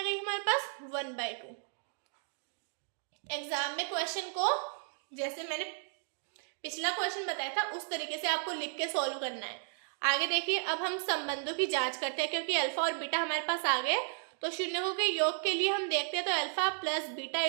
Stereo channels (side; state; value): left; silent; 55 dB below the other